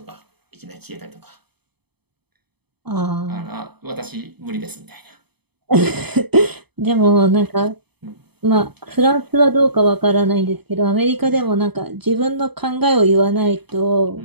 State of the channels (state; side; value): late; left; 0.98 ms